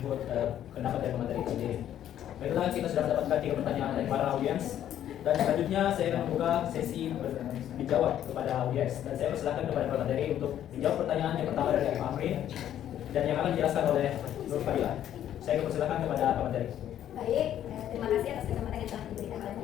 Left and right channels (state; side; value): quieter; right; 11.0 dB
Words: pendapat dari materi itu sendiri. Baiklah, kita sudah mendapatkan 3 pertanyaan dari para audiens. Dan selanjutnya saya akan membuka sesi dijawab kepada audiens. Dan saya persilakan kepada para materi untuk menjawab pertanyaan yang pertama dari Pak Amri dan yang akan dijelaskan oleh Nur Fadila. Saya persilakan kepada para materi. Baik, terima kasih atas kesempatan yang telah diberikan oleh